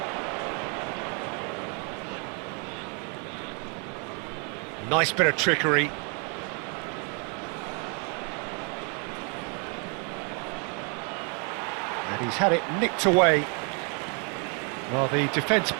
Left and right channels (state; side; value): quieter; left; 36.9 dB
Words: Nice bit of trickery. And he's had it nicked away. Well, the defence